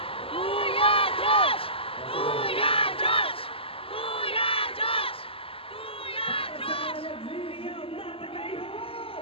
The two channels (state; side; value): late; right; 0.27 ms